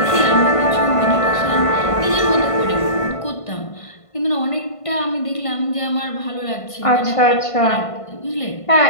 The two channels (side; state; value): right; late; 1.5 ms